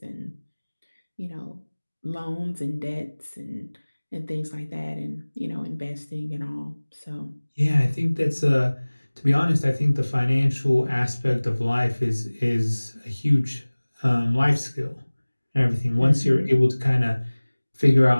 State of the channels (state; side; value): inverted; both; correlation -1.00